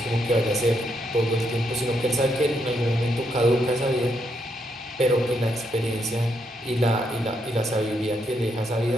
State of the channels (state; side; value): normal; both; correlation 0.78